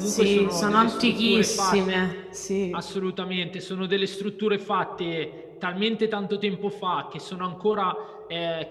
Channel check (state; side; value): identical; both; correlation 1.00